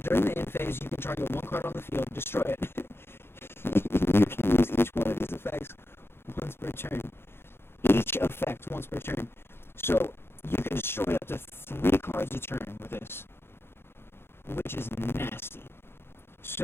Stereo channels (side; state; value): right; late; 0.11 ms